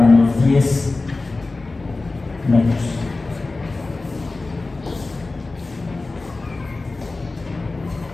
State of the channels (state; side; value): quieter; right; 3.4 dB